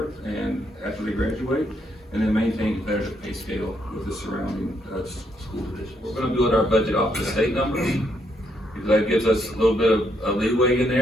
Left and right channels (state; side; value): normal; both; correlation 0.75